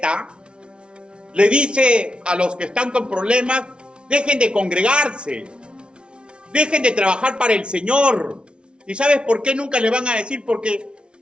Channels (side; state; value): left; late; 0.057 ms